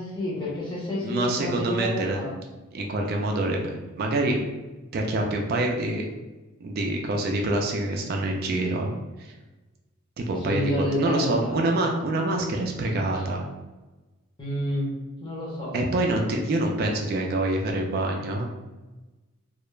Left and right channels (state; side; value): normal; both; correlation 0.44